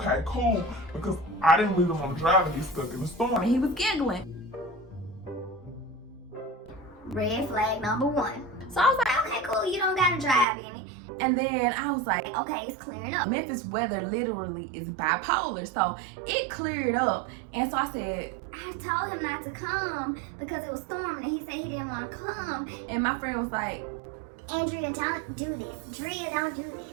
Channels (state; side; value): drops out; left; at 10.5 s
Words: cool, because I didn't really want to drive and get stuck in the storm. And he was giggling. Red flag number 1. So I was like, Okay, cool, you don't gotta drive in it. and then I was like, Okay, it's clearing up. Memphis weather literally is bipolar, so it cleared up. And so I said, I told him not to come because it was storming and he said he didn't want to come. and my friend was like, Andrea, don't do this. Drea, don't do